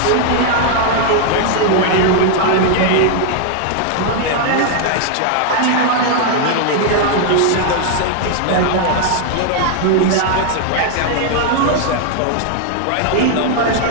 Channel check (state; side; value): different; both; correlation 0.00